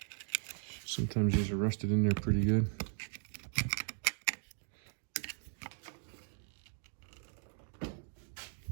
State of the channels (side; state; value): left; silent; 53 dB below the other